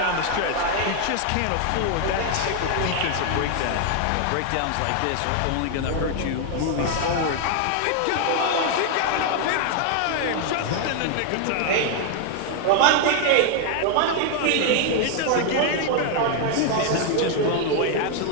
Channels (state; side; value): different; both; correlation 0.00